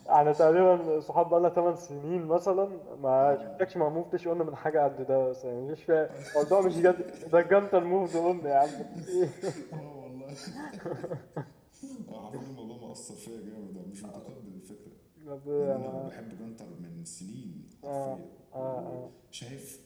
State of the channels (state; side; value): identical; both; correlation 1.00